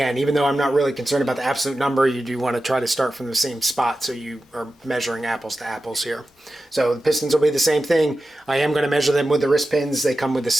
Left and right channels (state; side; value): normal; both; correlation 0.93